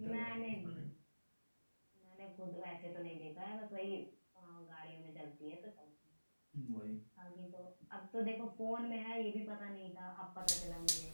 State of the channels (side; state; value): both; inverted; correlation -1.00